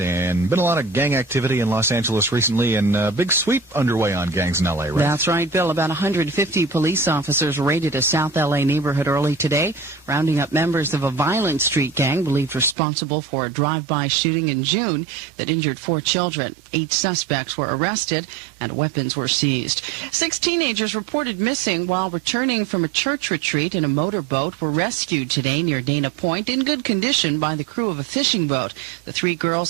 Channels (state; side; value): drops out; left; at 12.8 s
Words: been a lot of gang activity in Los Angeles recently, and a big sweep underway on gangs in L.A., right? That's right, Bill. About 150 police officers raided a South L.A. neighborhood early today, rounding up members of a violent street gang believed responsible for a drive-by shooting in June that injured 4 children. 8 suspects were arrested and weapons were seized. 6 teenagers reported missing while returning from a church retreat in a motorboat were rescued today near Dana Point in good condition by the crew of a fishing boat. The 3